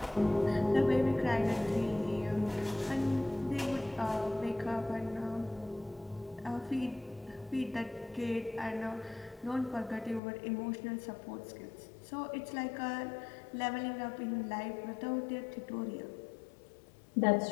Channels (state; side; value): drops out; right; at 10.2 s